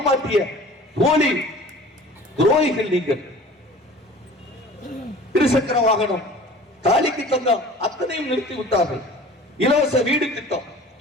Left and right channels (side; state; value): both; normal; correlation 0.45